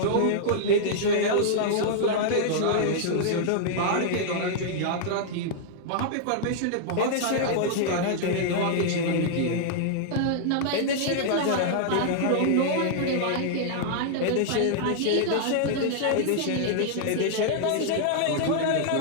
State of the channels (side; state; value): both; different; correlation -0.01